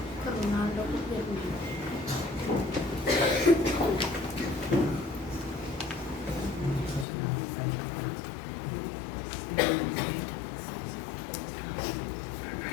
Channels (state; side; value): drops out; right; at 7.1 s